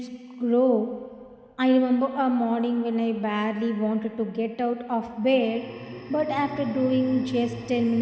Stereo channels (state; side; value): identical; both; correlation 1.00